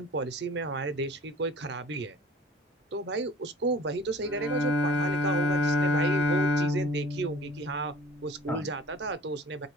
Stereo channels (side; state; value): both; normal; correlation 0.46